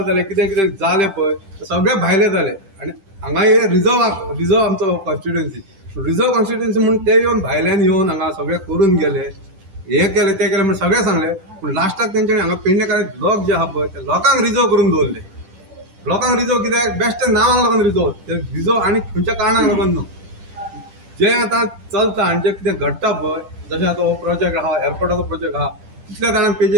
जाले कितें कितें जालें पळय सगळे भायले जाले. आनी हांगा हे रिझर्व आमचो कॉन्स्टिट्युएन्सी म्हणून ते येवन भायल्यान येवन हांगा सगळे करून गेले. हे केले ते केले म्हणून सगळे सांगले, पूण लास्टाक तेंच्यांनी हांगा पेडणेकारांचे लोक जे आहा पळय ते लोकांक रिझर्व करून दवरले. लोकांक रिझर्व कित्याक बेश्टे नांवांक लागून रिझर्व आनी खंयच्या कारणाक लागून न्हू. जे आतां चलता आनी जे कितें घडटा पळय, जशें आतां हो प्रोजेक्ट आहा, एअरपोर्टाचो प्रोजेक्ट आहा, कितल्या जाणांक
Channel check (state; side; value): late; left; 10 ms